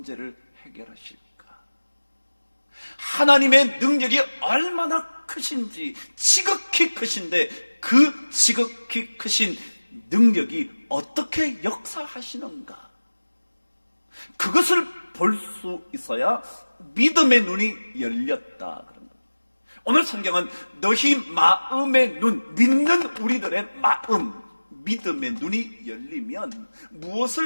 해결하실까? 하나님의 능력이 얼마나 크신지, 지극히 크신데 그 지극히 크신 능력이 어떻게 역사하시는가? 그것을 볼 수 있어야 믿음의 눈이 열렸다 그런 겁니다. 오늘 성경은 너희 마음의 눈, 믿는 우리들의 마음, 믿음의 눈이 열리면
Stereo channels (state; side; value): inverted; both; correlation -1.00